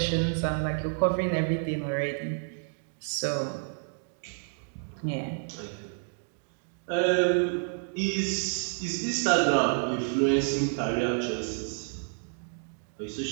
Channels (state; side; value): silent; left; 58 dB below the other